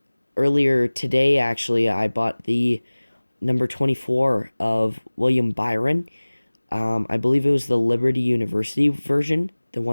today, actually, I bought the number 24 of William Byron. I believe it was the Liberty University version, the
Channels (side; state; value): both; inverted; correlation -1.00